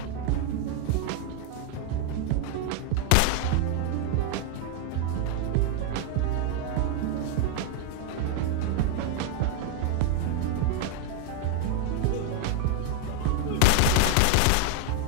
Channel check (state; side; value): different; both; correlation 0.00